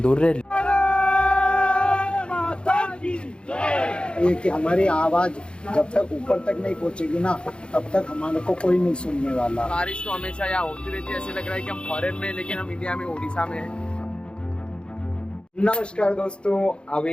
रैली। ये कि हमारी आवाज जब तक ऊपर तक नहीं पहुंचेगी ना, तब तक हमारे को कोई नहीं सुनने वाला। बारिश तो हमेशा यहाँ होती रहती है, ऐसे लग रहा है कि हम फॉरेन में, लेकिन हम इंडिया में, उड़ीसा में हैं। नमस्कार दोस्तों,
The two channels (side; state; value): right; late; 0.054 ms